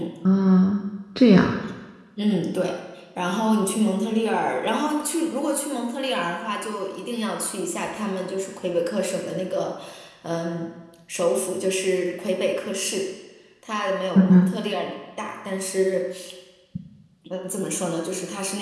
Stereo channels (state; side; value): identical; both; correlation 1.00